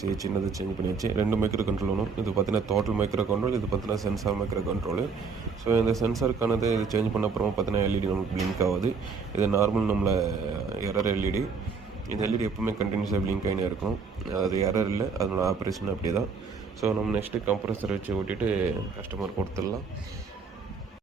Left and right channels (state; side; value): quieter; left; 5.2 dB